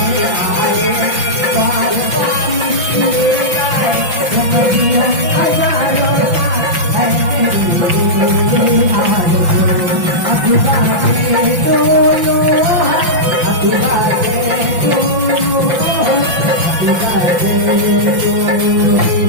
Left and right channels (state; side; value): late; left; 5.8 ms